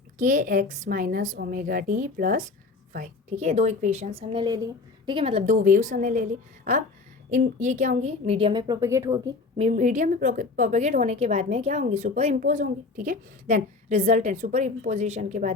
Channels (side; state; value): right; quieter; 4.0 dB